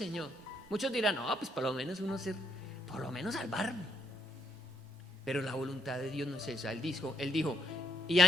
Muchos dirán, no, pues por lo menos salvarme. Pero la voluntad de Dios no es esa. Él dijo, y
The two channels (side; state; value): both; normal; correlation 0.74